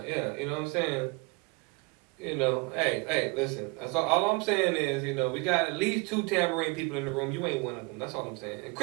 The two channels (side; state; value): left; quieter; 28.6 dB